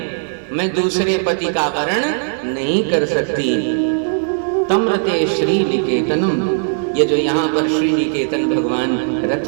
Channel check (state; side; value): silent; left; digital silence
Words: मैं दूसरे पति का वर्ण नहीं कर सकती। तम्रते श्री निकेतनम, ये जो यहाँ पर श्री निकेतन भगवान रथ